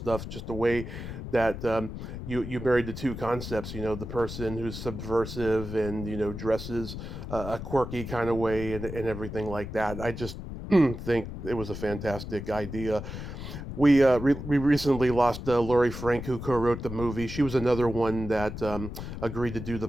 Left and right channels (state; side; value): noise; left; rumble, 8 dB below the sound